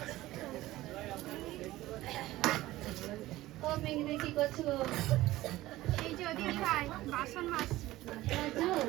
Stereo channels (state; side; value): quieter; left; 16.8 dB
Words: ও মেঘিদি, কি করছো গো? এই যে দিদি ভাই বাসন মাজছি। আছো?